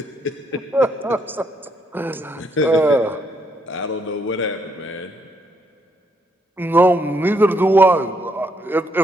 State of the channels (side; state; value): both; normal; correlation 0.74